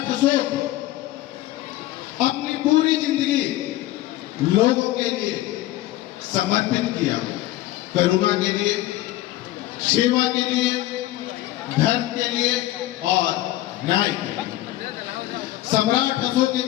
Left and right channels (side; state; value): right; quieter; 15.6 dB